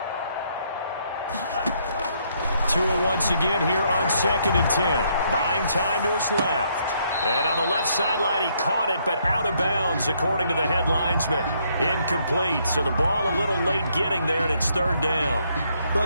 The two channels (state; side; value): inverted; both; correlation -0.71